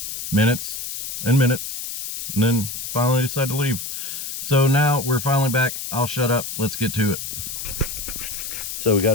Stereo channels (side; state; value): left; noise; hiss, 6 dB below the sound